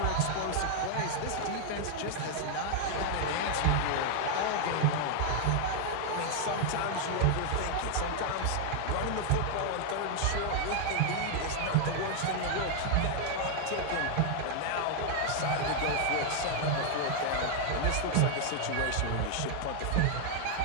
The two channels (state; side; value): different; both; correlation 0.00